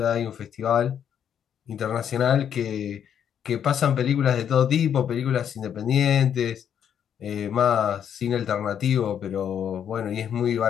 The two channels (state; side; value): quieter; right; 8.8 dB